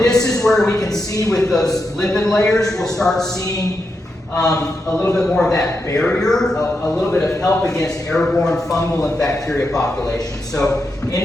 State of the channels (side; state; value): both; normal; correlation 0.85